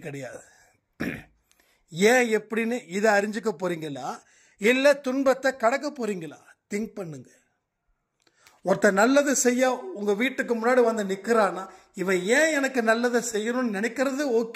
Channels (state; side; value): identical; both; correlation 1.00